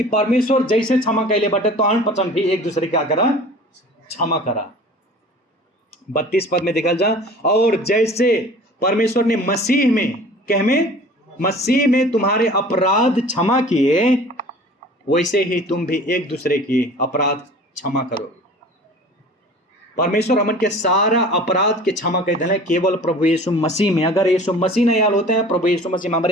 परमेश्वर जैसे क्षमा कैले बटे तो अन पचन भी एक दूसरे क्या करा, क्षमा करा। 32 पद में देखल जा और जैसे परमेश्वर ने मसीह में तुम्हारे अपराध क्षमा किए वैसे ही तुम भी एक दूसरे की अपराध क्षमा करो। परमेश्वर हमन के सारा अपराध के क्षमा कर दिले केवल प्रभु यीशु मसीह में। अगर यीशु मसीह नहीं आल होते हैं, प्रभु यीशु मसीह में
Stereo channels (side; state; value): both; normal; correlation 0.44